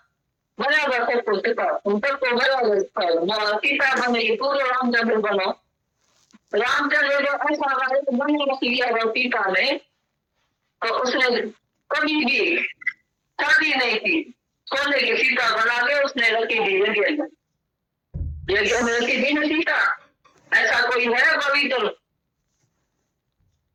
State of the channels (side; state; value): both; identical; correlation 1.00